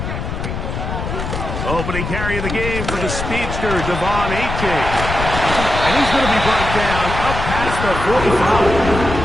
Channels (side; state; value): left; noise; rumble, 5 dB below the sound